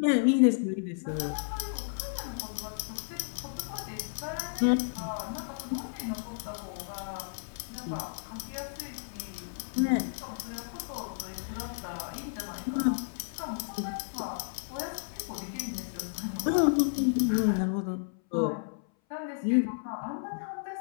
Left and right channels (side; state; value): right; silent; 56 dB below the other